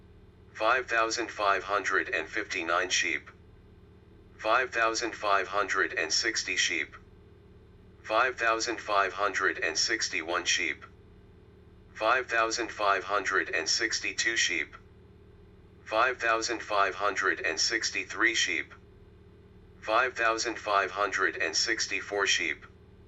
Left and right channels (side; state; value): both; identical; correlation 1.00